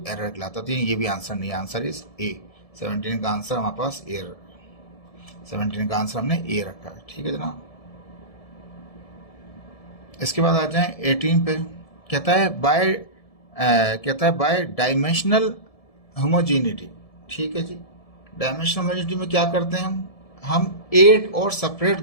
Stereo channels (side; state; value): right; late; 1.7 ms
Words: एरर कहलाता है। तो ये भी आंसर नहीं है, आंसर इज ए। 17 का आंसर हमारे पास ए, 17 का आंसर हमने ए रखा है। ठीक है जनाब। इसके बाद आ जाएं 18 पे। कहता है बाय डायमेंशनल होमोजेनिटी। ठीक है जी। डायमेंशनल होमोजेनिटी में क्या करते हैं हम एड और सेपरेट